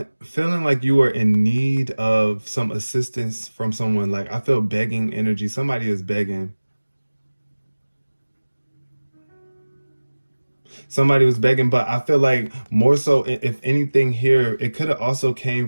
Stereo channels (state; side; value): inverted; both; correlation -1.00